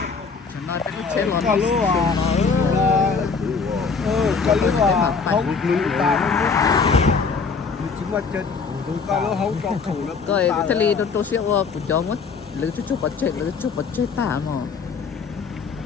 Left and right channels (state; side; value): quieter; right; 5.1 dB